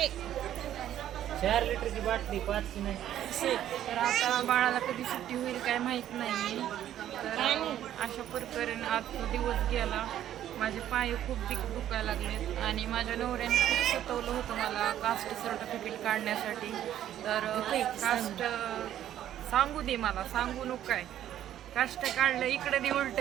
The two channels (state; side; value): quieter; left; 11.5 dB